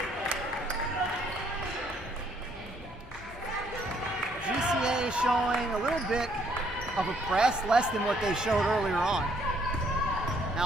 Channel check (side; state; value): both; normal; correlation 0.67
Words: GCA showing a little bit of a press, less than what they showed earlier on.